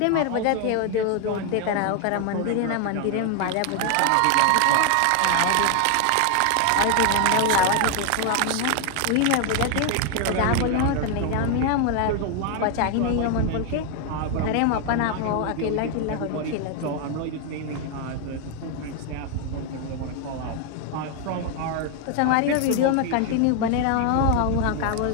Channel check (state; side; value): different; both; correlation 0.00